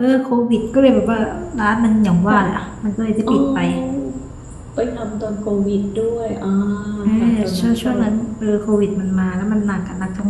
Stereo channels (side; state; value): both; identical; correlation 1.00